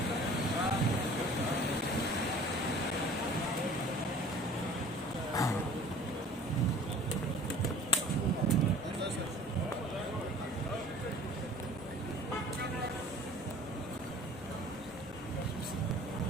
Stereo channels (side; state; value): both; normal; correlation 0.47